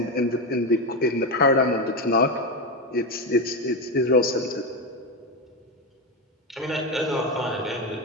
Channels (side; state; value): both; normal; correlation 0.13